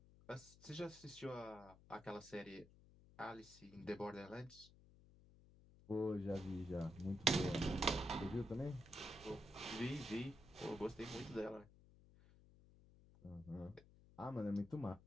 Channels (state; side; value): noise; left; hum, 22 dB below the sound